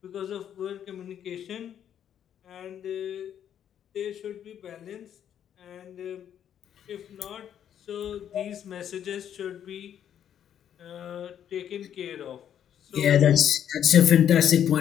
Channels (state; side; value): quieter; right; 9.6 dB